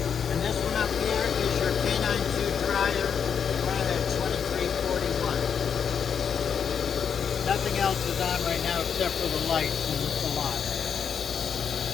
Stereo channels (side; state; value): right; quieter; 7.3 dB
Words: and this one up here is your K92 dryer running at 2341. Nothing else is on right now except for the lights in the salon.